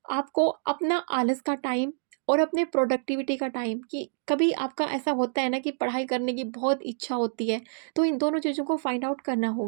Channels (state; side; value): silent; left; digital silence